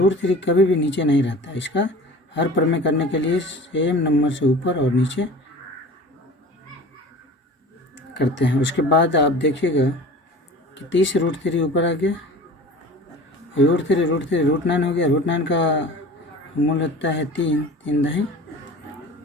कभी भी नीचे नहीं रहता, इसका हर प्रमेय करने के लिए सेम नंबर से ऊपर और नीचे करते हैं। उसके बाद आप देखिएगा कि 30√3 ऊपर आ गया, √3 √9 हो गया, √9 का मूल होता है 3 दही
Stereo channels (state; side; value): normal; both; correlation 0.39